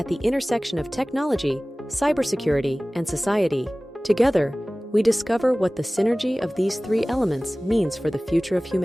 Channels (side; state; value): both; normal; correlation 0.98